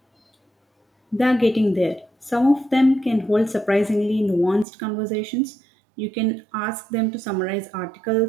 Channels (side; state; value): left; drops out; at 4.7 s